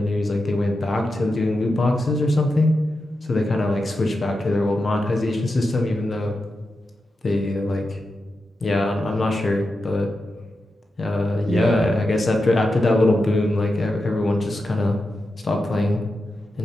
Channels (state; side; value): normal; both; correlation 0.89